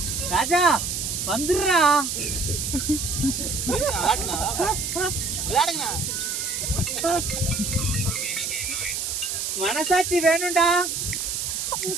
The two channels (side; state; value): right; noise; hiss, 2 dB below the sound